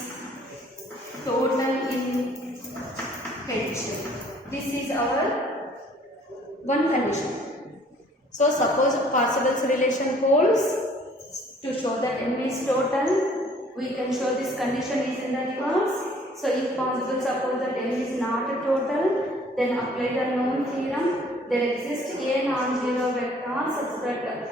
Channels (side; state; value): both; normal; correlation 0.57